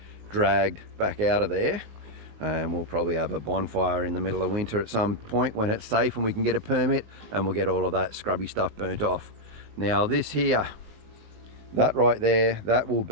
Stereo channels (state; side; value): late; left; 19 ms